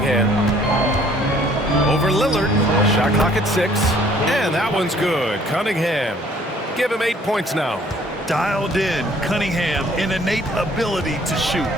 Over Lillard. Shot clock at 6. And that one's good. Cunningham. Give him 8 points now. Dialed in, Cunningham, an innate ability to shoot.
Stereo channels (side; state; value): both; normal; correlation 0.59